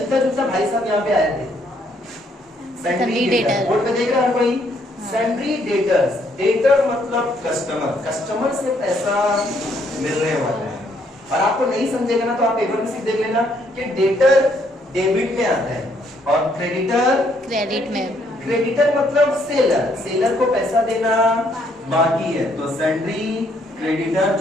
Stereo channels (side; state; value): both; normal; correlation 0.69